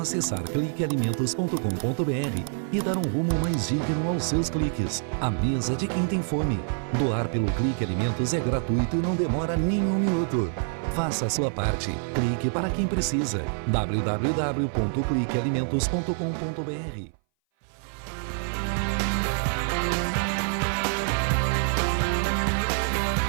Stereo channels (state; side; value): silent; left; 59 dB below the other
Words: cliquealimentos.com.br e dar um rumo mais digno aos seus cliques. A mesa de quem tem fome. Doar pelo Clique Alimentos é gratuito e não demora nem um minuto. Faça a sua parte. Clique para quem precisa. www.cliquealimentos.com.br.